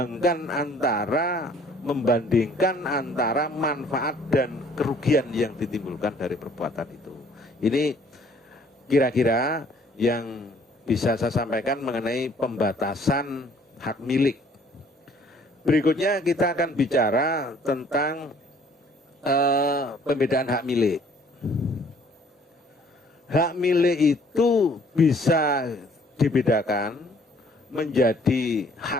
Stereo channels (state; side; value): normal; both; correlation 0.58